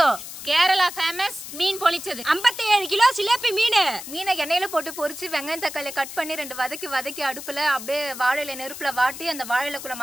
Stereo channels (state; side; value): noise; left; hiss, 11 dB below the sound